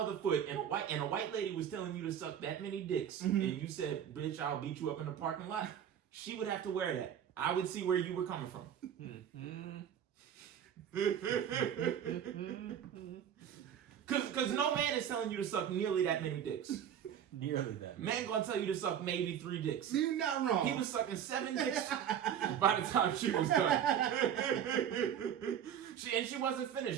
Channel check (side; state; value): left; quieter; 9.3 dB